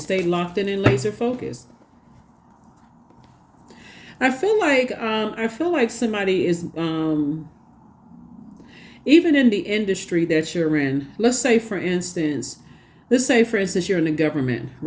Stay locked in and laser focused. I feel like somebody is even in the industry that you're in. Let's say for instance you're in the government,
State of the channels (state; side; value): identical; both; correlation 1.00